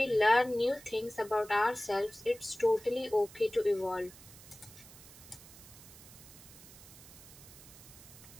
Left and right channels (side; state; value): right; noise; hiss, 19 dB below the sound